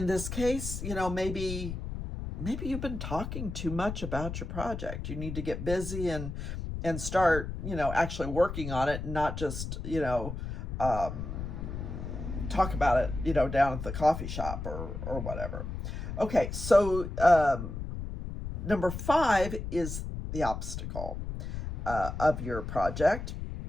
this case, maybe you've been talking too much about your project. You need to get busy and start, actually working on it, and not just, talk about it, down at the coffee shop or whatever. Okay, so number 5 is the obstacle of your project.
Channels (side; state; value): left; noise; rumble, 6 dB below the sound